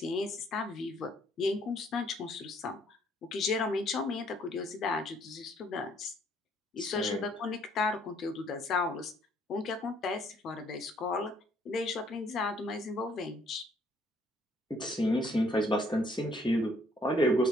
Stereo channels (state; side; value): normal; both; correlation 0.65